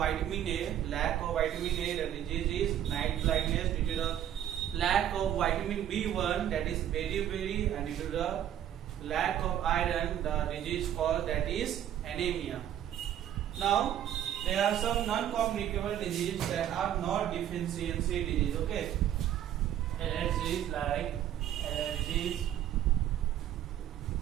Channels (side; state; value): left; quieter; 10.9 dB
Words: A, lack of vitamin A, the disease is night blindness. Due to the lack of vitamin B1, that is beriberi, and due to the lack of iron, the disease called that is anemia. Now, there are some non-communicable diseases that are not deficiency disease. Okay, allergies like allergies.